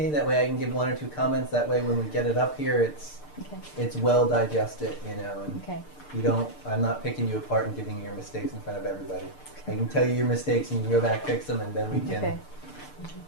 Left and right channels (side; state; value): right; late; 6.7 ms